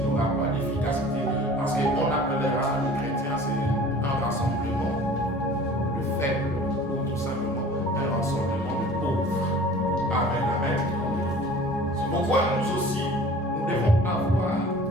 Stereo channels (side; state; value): both; normal; correlation 0.45